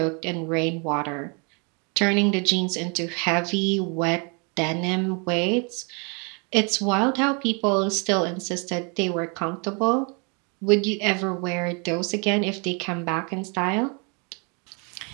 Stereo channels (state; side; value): quieter; left; 34.1 dB